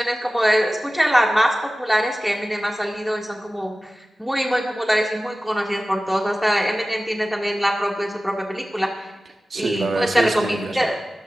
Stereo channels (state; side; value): normal; both; correlation 0.96